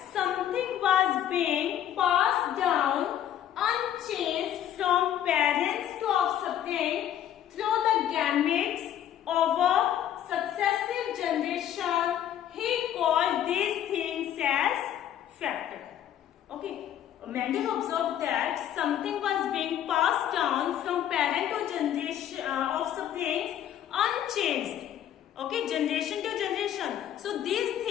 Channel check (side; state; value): right; quieter; 10.8 dB